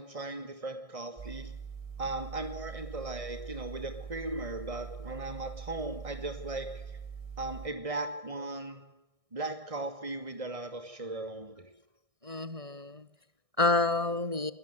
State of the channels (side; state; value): left; late; 1.6 ms